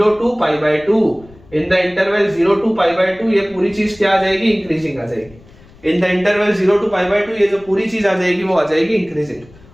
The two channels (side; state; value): left; noise; rumble, 25 dB below the sound